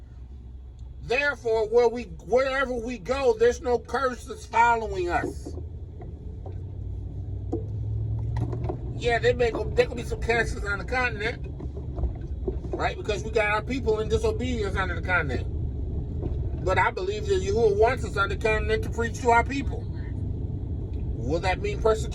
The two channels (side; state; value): both; identical; correlation 1.00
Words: Therefore, wherever we go, there's no curse that's following us. Yeah, there could be some curses on the continent, right? Because we got our people in disobedience under the continent. But I believe that Yahuwah wants us on the continent to preach to our people. Will that mean